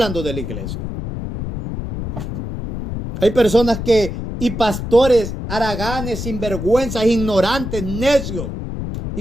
de la iglesia. Hay personas y pastores haraganes, sinvergüenzas, ignorantes, necios,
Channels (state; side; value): noise; left; rumble, 6 dB below the sound